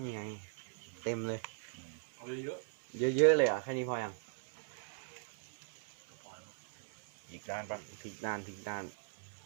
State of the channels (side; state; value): left; silent; 52 dB below the other